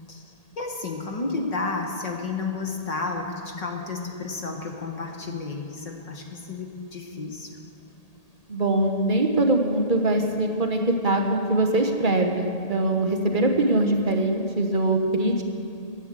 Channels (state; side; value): late; right; 1.8 ms